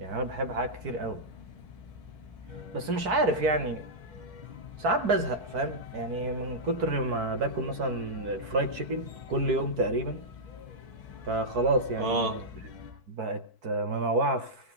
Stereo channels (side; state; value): left; late; 4.5 ms